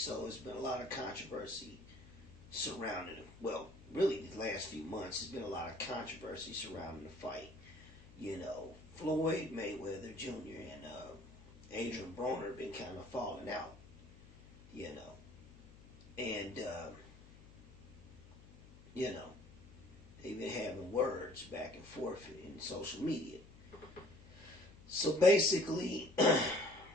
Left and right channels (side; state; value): left; noise; hum, 21 dB below the sound